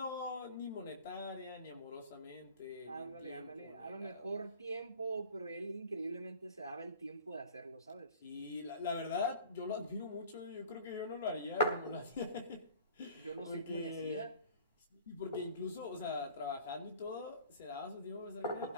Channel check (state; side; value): inverted; both; correlation -0.45